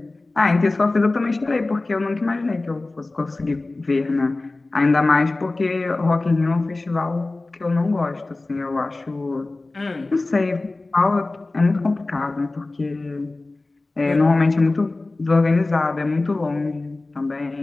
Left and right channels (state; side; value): quieter; right; 3.1 dB